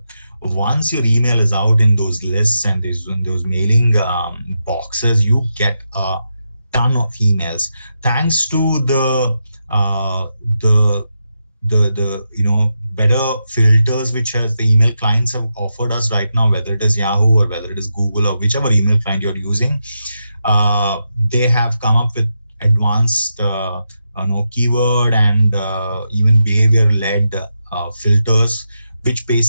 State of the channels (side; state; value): both; inverted; correlation -0.86